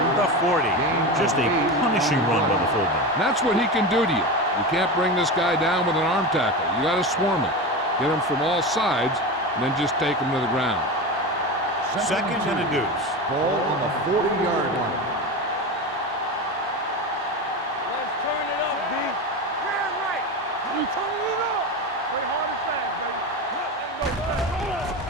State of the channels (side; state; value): both; normal; correlation 0.23